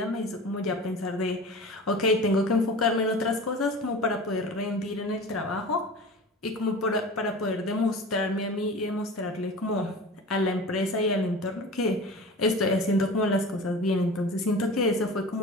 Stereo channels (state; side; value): normal; both; correlation 0.35